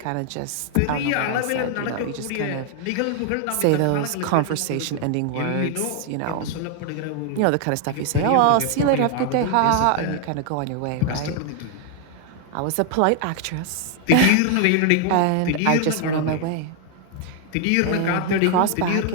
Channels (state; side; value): different; both; correlation 0.00